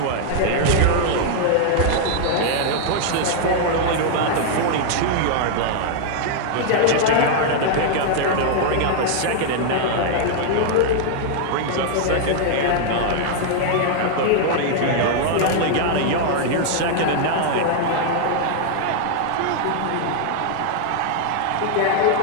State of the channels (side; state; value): both; different; correlation 0.00